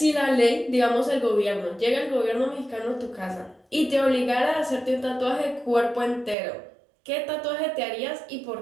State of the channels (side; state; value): left; drops out; at 6.4 s